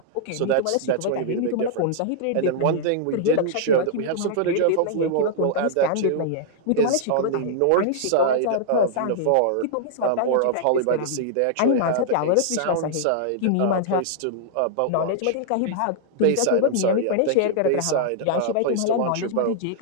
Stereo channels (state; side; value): different; both; correlation -0.01